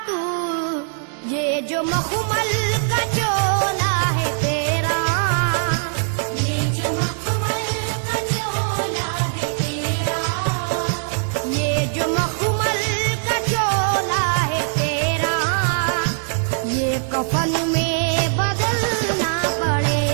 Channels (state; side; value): silent; left; 65 dB below the other